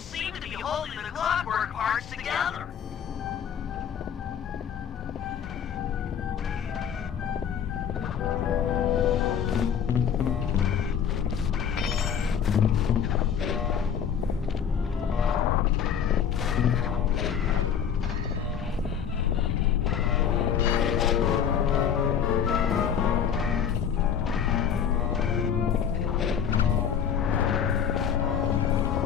to be holding the clockwork parts together.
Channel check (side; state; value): right; quieter; 8.1 dB